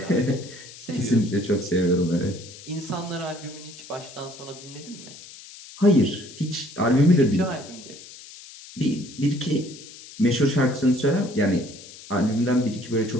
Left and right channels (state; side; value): noise; left; hiss, 17 dB below the sound